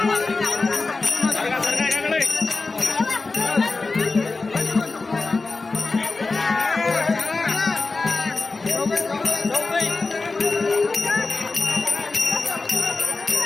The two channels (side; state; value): right; quieter; 3.8 dB